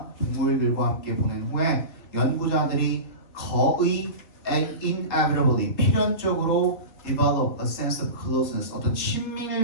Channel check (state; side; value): late; right; 3.8 ms